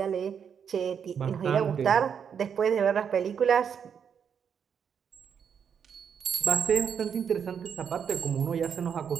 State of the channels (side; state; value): left; quieter; 7.5 dB